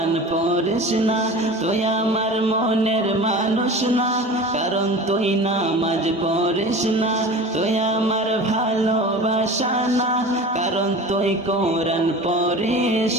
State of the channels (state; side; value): normal; both; correlation 0.36